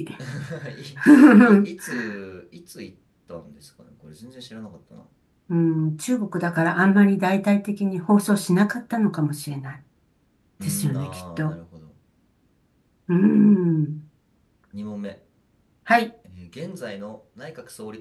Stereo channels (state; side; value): identical; both; correlation 1.00